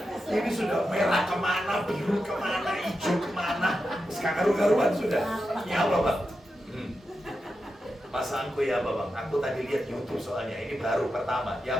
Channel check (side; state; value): both; normal; correlation 0.89